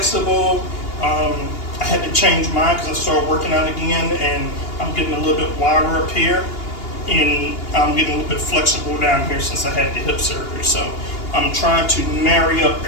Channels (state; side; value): late; right; 2.8 ms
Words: I had to change mine because I started working out again, and I'm getting a little bit wider up here, and I'm getting a little bit flexible down here since I had the hip surgery. So I'm trying to marry up